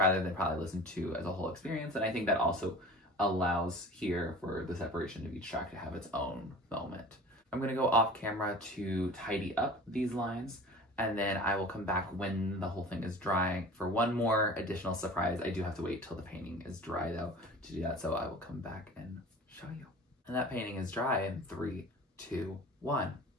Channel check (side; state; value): both; normal; correlation 0.40